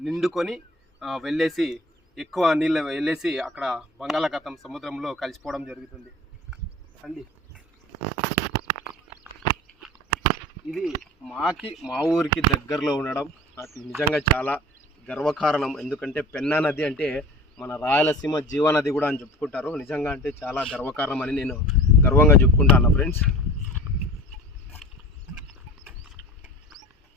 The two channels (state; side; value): normal; both; correlation 0.39